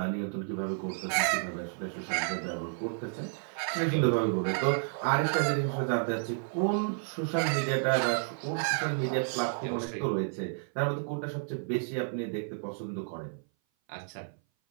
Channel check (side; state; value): left; silent; 56 dB below the other